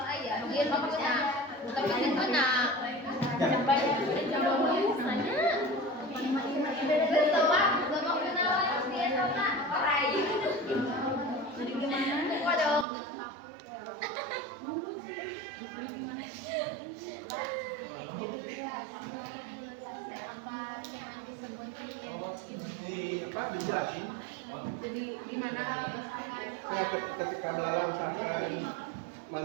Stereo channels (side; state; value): left; drops out; at 12.9 s